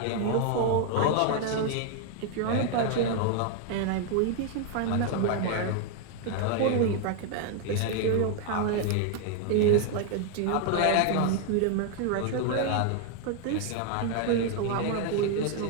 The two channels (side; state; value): both; different; correlation 0.00